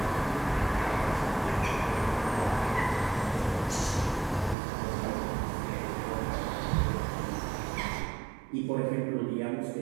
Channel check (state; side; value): drops out; left; at 4.5 s